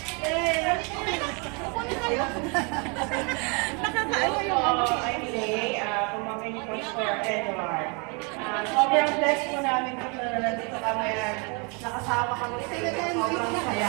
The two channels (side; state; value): left; quieter; 33.2 dB